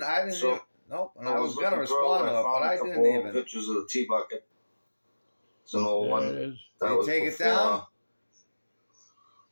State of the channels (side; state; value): both; inverted; correlation -1.00